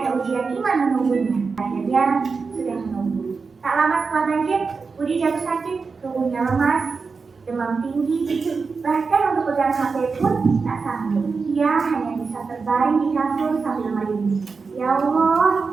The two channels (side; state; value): left; quieter; 4.8 dB